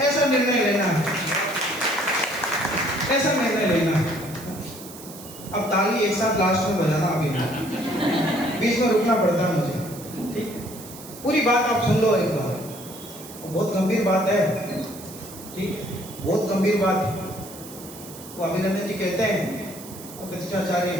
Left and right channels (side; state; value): right; noise; hiss, 16 dB below the sound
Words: ऐसा निर्णय लेना है, ऐसा निर्णय लेना है। अब ताली एक साथ लास्ट में बजाना, अभी नहीं, बीच में रुकना पड़ता है मुझे। ठीक, पूरी बात आप सुन लो एक बार, बहुत गंभीर बात है। ठीक, बहुत गंभीर बात है। वो अभिनंदन जी कहते हैं, प्रतिष्ठाचार्य